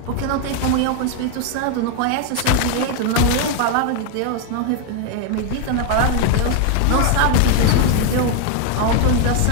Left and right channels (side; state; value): both; different; correlation 0.00